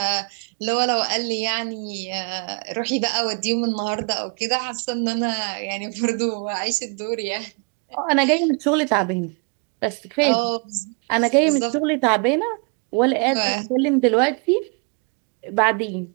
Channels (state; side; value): quieter; left; 36.4 dB